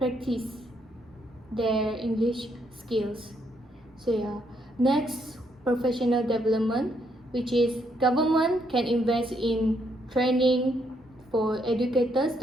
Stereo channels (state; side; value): normal; both; correlation 0.74